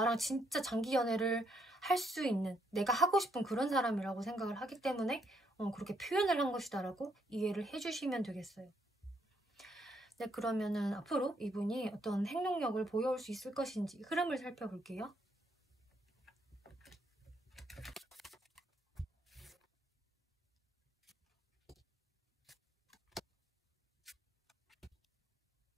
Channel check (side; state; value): both; normal; correlation 0.73